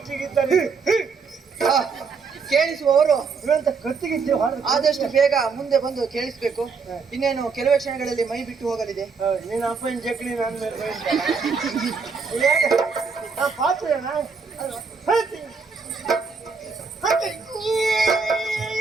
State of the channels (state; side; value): quieter; left; 5.1 dB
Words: ಕೇಳಿಸುವವರು ಇವಂತ ಕತ್ತಿಗಿದ್ದು ಆದಷ್ಟು ಬೇಗ ಮುಂದೆ ಬಂದು ಕೇಳಿಸ್ಬೇಕು. ಇನ್ನೇನು ಕೆಲವೇ ಕ್ಷಣಗಳಲ್ಲಿ ಮೈ ಬಿಟ್ಟು ಹೋಗಲಿದೆ. ನೀನು ಅಪ್ಪನ ಜಕ್ಲಿ ನಾನು ಪಾತ್ರ